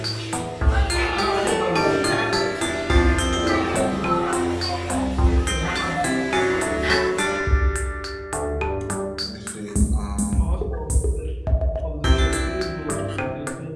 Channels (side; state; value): both; identical; correlation 1.00